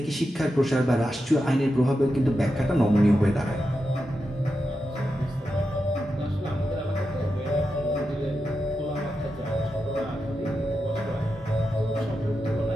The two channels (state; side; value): normal; both; correlation 0.88